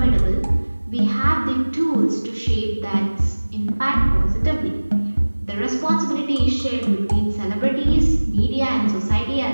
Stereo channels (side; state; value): both; inverted; correlation -1.00